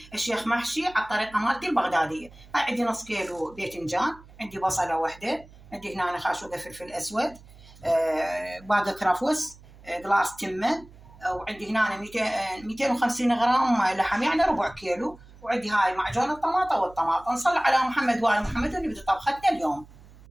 الشيخ محشي على الطريقة مالتي البغدادية. هاي عندي نص كيلو باذنجان، عندي بصلة واحدة، عندي هنا خاشوقة فلفل أسود، باقة كرفس، قلاص تمن، وعندي هنا 250 غرام لحم، يعني ربع كيلو، وعندي هاي معجون الطماطة والطماطم. نصلي على محمد وآل محمد ونبدأ طبختنا اليوم.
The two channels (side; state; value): right; noise; hum, 22 dB below the sound